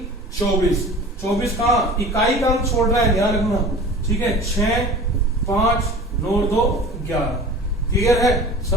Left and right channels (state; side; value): normal; both; correlation 0.40